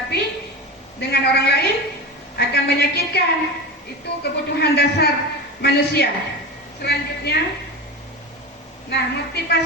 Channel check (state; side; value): normal; both; correlation 0.25